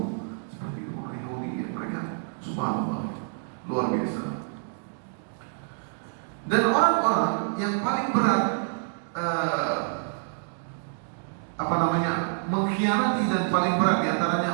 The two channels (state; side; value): silent; left; 60 dB below the other